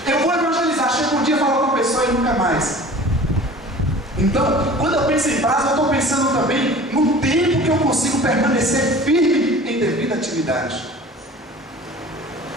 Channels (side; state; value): both; normal; correlation 0.43